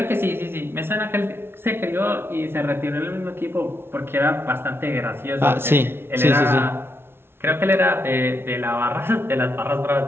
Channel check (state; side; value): late; left; 0.11 ms